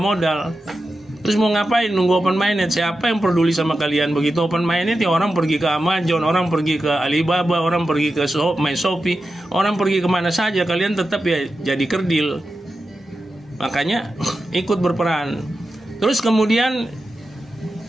Terus mau ngapain nunggu open minded? Siapa yang peduli sama kalian? Begitu open minded ya orang pergi ke Amazon, orang pergi ke Alibaba, orang pergi ke Shopee, orang pergi kemana saja. Kalian tetap ya jadi kerdil. Makanya ikut berperan. Terus kemudian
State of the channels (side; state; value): both; normal; correlation 0.91